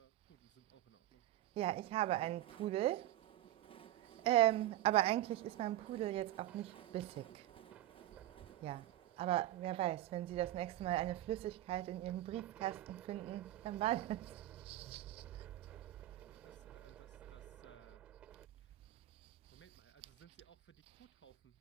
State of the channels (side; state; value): left; quieter; 14.4 dB